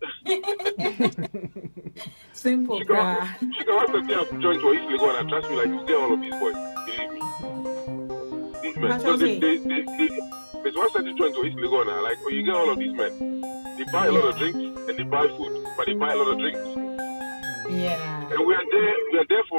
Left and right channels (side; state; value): both; inverted; correlation -1.00